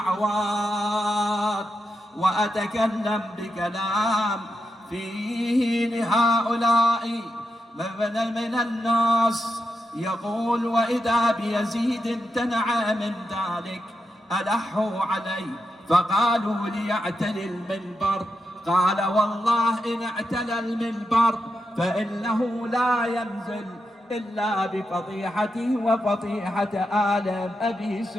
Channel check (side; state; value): both; normal; correlation 0.86